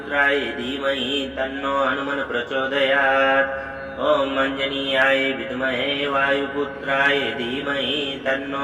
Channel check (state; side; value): identical; both; correlation 1.00